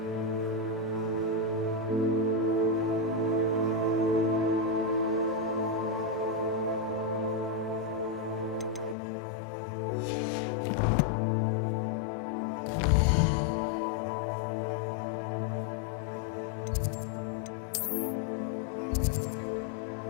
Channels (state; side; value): drops out; right; at 9.0 s